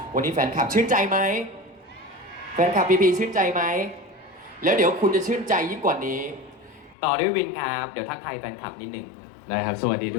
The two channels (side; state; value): right; drops out; at 7.0 s